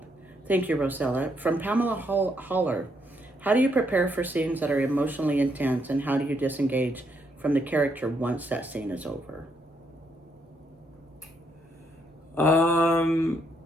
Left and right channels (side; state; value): both; normal; correlation 0.75